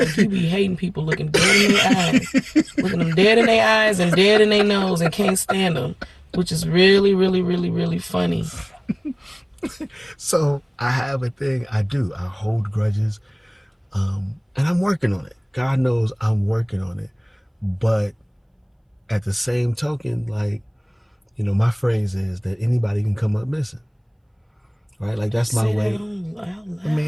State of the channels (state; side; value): identical; both; correlation 1.00